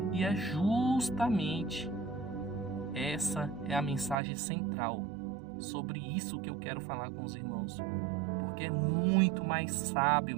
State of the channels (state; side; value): drops out; left; at 4.2 s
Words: E é justamente essa é a mensagem central. Sobre isso que eu quero falar com os irmãos. Porque é muito mais sábio,